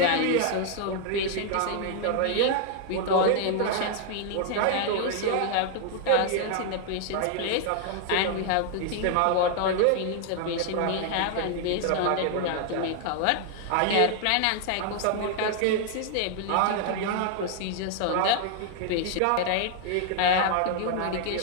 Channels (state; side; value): different; both; correlation 0.00